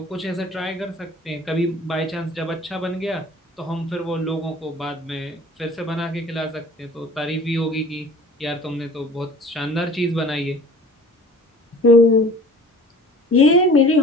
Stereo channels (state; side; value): normal; both; correlation 0.47